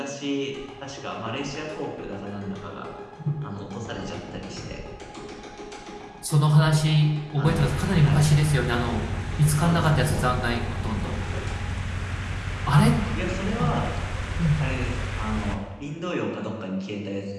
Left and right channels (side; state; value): both; identical; correlation 1.00